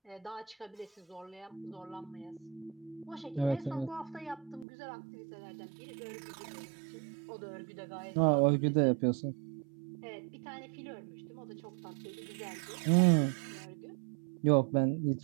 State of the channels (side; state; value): left; drops out; at 4.7 s